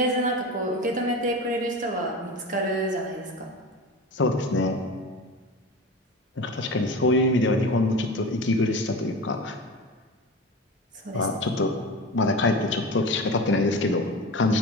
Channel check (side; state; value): both; normal; correlation 0.30